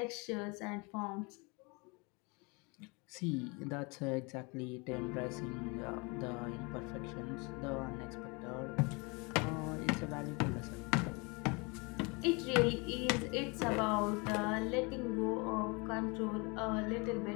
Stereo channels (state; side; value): quieter; right; 29.1 dB